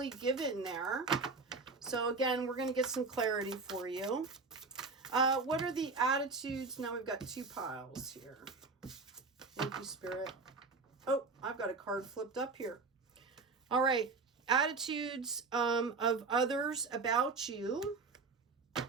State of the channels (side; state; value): left; quieter; 4.2 dB